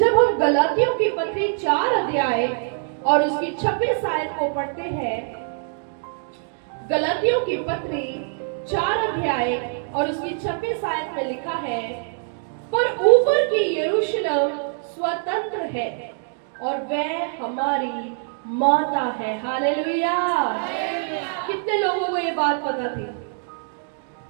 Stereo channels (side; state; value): left; silent; 59 dB below the other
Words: हम गलातियों की पत्री 4 अध्याय और उसकी 26 आयत को पढ़ते हैं। गलातियों की पत्री 4 अध्याय और उसकी 26 आयत में लिखा है, पर ऊपर की यरूशलेम स्वतंत्र है और वह हमारी माता है। हालेलुया। कितने लोगों को ये बात पता थी?